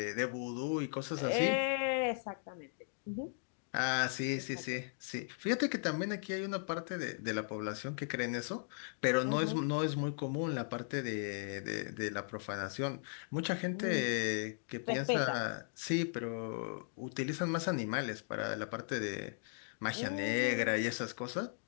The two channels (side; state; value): right; silent; digital silence